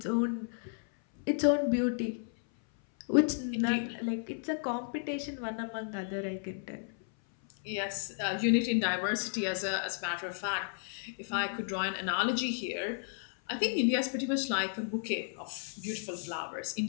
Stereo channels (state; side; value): silent; right; 56 dB below the other